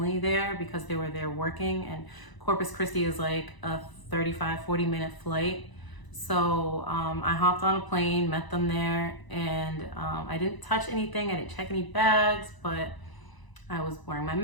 there because they were there working, and Corpus Christi is like a 40 minute flight. So I hopped on a plane, met them there, and I didn't touch anything, I didn't check any bags, but I was wearing my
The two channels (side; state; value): right; late; 1.0 ms